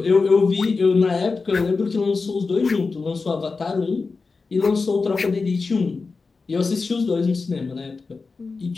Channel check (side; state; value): right; quieter; 4.3 dB